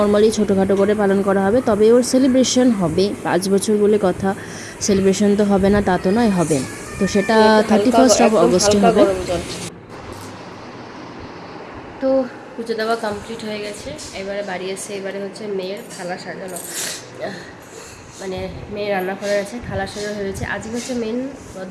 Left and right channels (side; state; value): both; identical; correlation 1.00